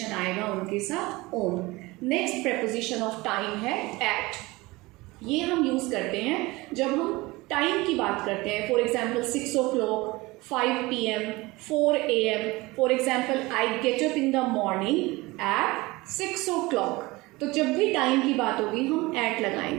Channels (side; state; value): left; quieter; 21.8 dB